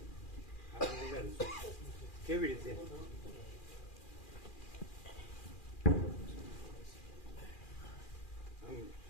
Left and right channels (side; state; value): right; late; 2.4 ms